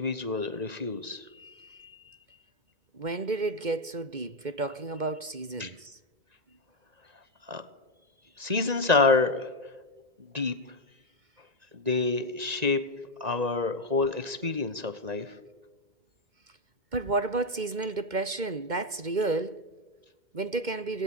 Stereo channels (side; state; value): left; late; 2.1 ms